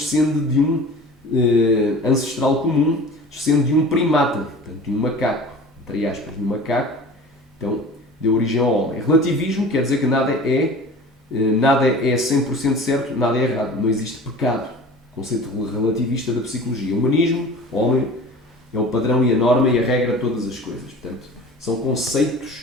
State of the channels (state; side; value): normal; both; correlation 0.40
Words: de um ancestral comum, descende de um primata, portanto, de um macaco, entre aspas, de um macaco, então deu origem ao homem. Relativismo quer dizer que nada é 100% certo, nada é errado, não existe pecado, conceito relativista da psicologia. O humanismo, o homem é o padrão e a norma e a regra de todas as coisas, portanto, são